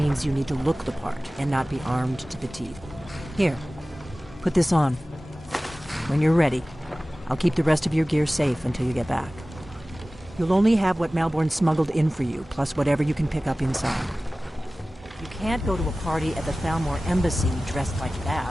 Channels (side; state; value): both; normal; correlation 0.97